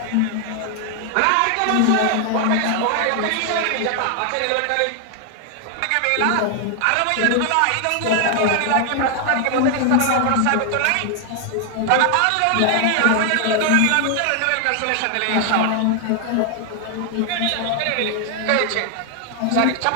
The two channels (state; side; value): different; both; correlation 0.00